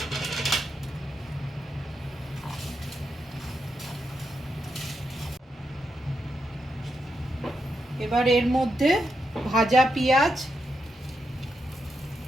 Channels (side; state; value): both; normal; correlation 0.84